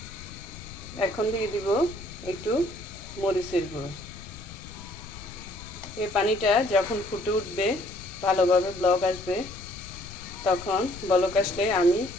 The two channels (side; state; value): left; noise; rumble, 14 dB below the sound